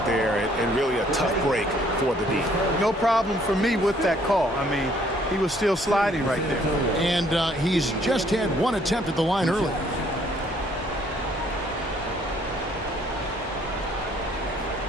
there, and really a tough break for the D. No problem for me with that call. I mean, he was still sliding right there. And he's just had 1 attempt at the line early.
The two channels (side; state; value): both; normal; correlation 0.63